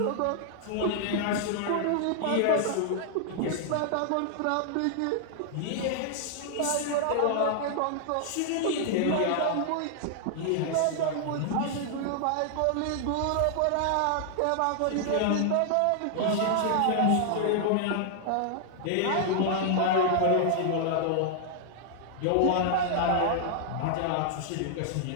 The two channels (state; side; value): different; both; correlation -0.01